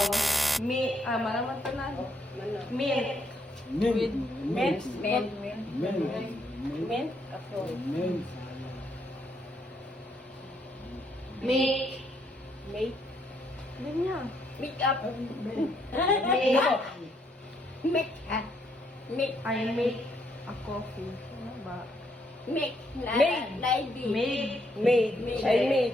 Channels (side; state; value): both; normal; correlation 0.73